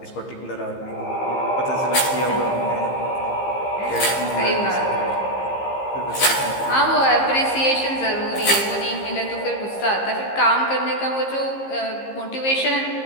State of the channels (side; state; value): right; late; 15 ms